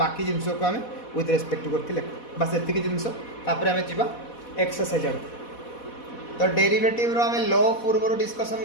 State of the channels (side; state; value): right; late; 4.1 ms